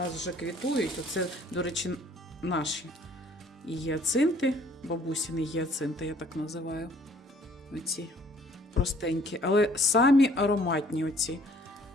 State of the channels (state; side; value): normal; both; correlation 0.58